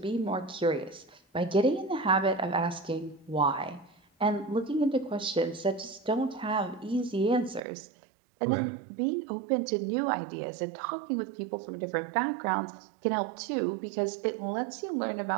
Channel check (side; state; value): left; drops out; at 7.6 s